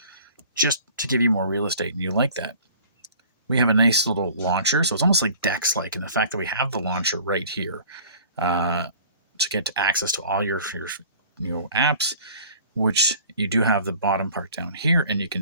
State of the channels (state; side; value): inverted; both; correlation -0.48